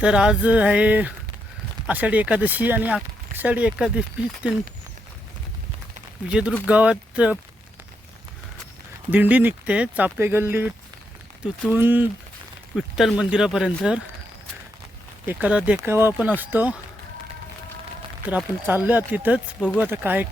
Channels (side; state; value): both; normal; correlation 0.81